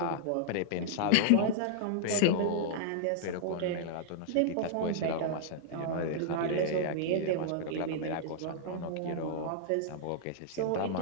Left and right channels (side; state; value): both; different; correlation -0.01